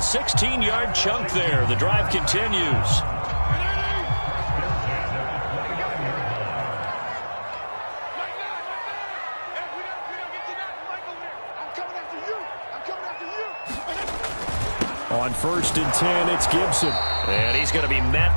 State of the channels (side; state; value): both; inverted; correlation -1.00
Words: chunk there. The drive continues. On 1st and 10, it's Gibson. And he's going to be